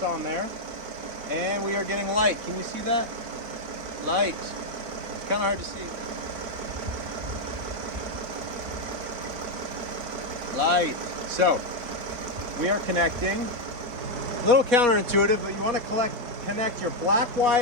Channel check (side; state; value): left; late; 4.2 ms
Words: on there, and we are getting light. Can you see that? Light. It's kind of hard to see. Light. So we are connecting. A little counterintuitive, but you want to connect your black